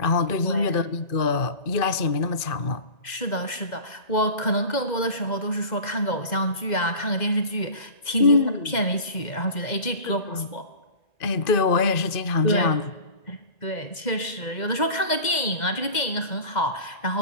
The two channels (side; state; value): right; late; 2.0 ms